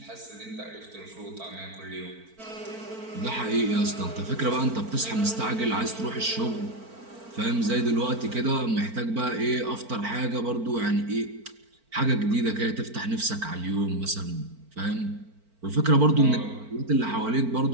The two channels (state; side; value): late; left; 4.4 ms